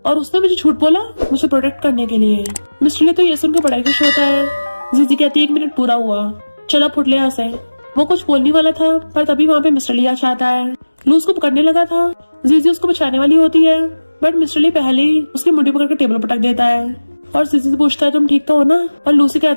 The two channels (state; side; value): inverted; both; correlation -1.00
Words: और उसने मुझे झूठ बोला मुझे प्रोटेक्ट करने के लिए। मिस्टर ली तो ये सुनकर बड़ा खुश होता है। जीजी कहती है 1 मिनट पूरा हुआ, चला फुट ले यहाँ से। वो कुछ बोलने वाला था पर तभी वहाँ पे मिस्टर ली आ जाता है। लू उसको पकड़ने लगा था, जीजी उसको बचाने वाली होती है, बट मिस्टर ली पहले ही उसकी मुट्ठी पकड़ के टेबल पटक देता है और जीजी से पूछता है तुम ठीक तो हो ना। और लू से